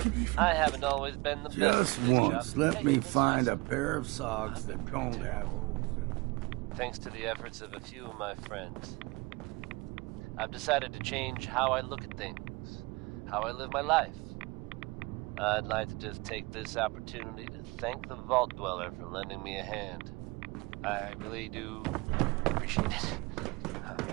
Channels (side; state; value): left; quieter; 25.1 dB